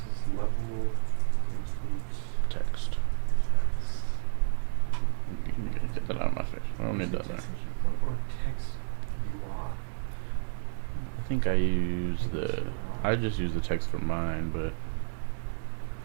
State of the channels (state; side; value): silent; left; digital silence